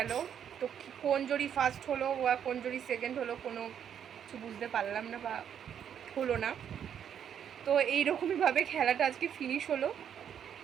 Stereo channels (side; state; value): left; quieter; 8.8 dB